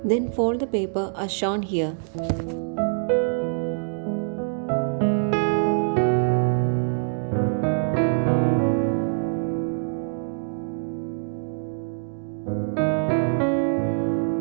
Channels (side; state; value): left; silent; digital silence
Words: Then fold the paper as shown here.